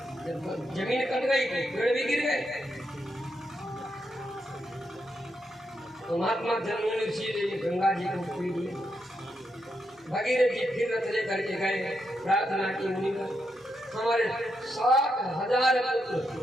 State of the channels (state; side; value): normal; both; correlation 0.82